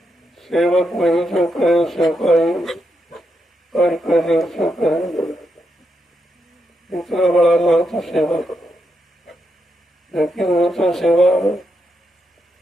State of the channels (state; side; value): normal; both; correlation 0.82